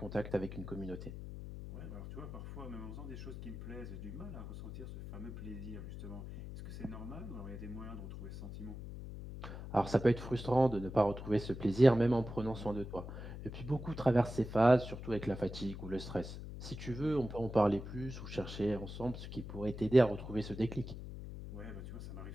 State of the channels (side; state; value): left; noise; hum, 9 dB below the sound